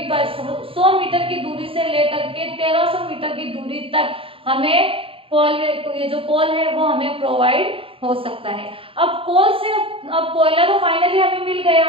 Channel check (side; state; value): left; late; 0.27 ms